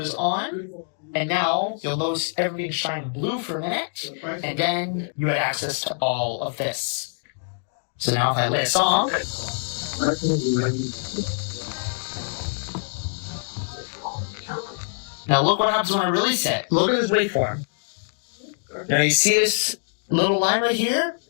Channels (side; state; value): right; silent; digital silence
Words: on, and now you'll notice everything shine blue for a minute, and then you have access to all of this. So now if I play a song, now look what happens when I release it. Look at this waveform. Now you see this little line right here?